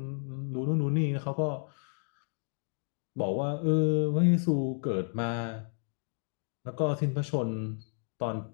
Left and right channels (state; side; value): silent; right; digital silence